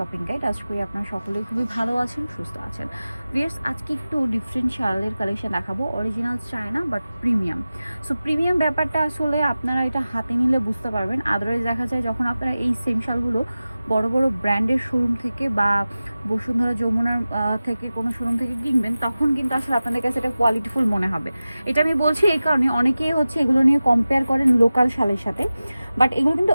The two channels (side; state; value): both; inverted; correlation -0.95